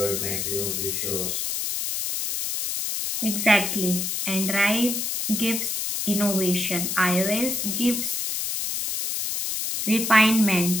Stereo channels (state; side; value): noise; left; hiss, 2 dB below the sound